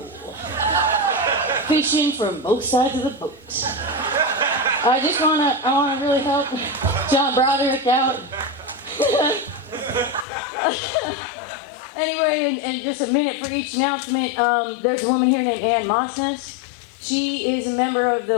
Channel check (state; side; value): drops out; right; at 10.2 s